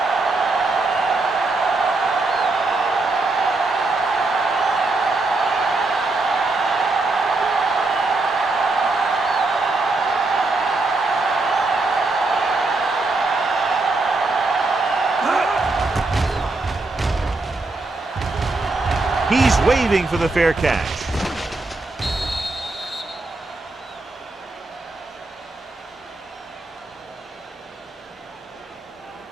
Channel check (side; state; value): left; quieter; 3.3 dB